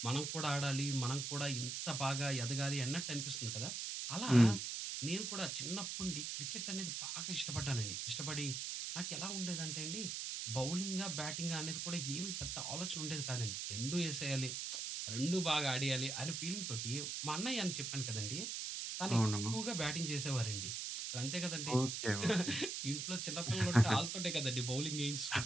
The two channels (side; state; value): right; noise; hiss, 3 dB below the sound